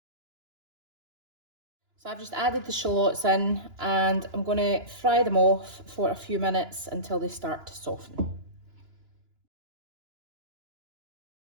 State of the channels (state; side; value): late; left; 2.9 ms